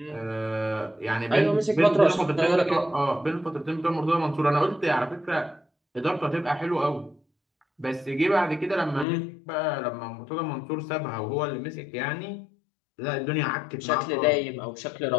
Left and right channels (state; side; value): drops out; right; at 9.1 s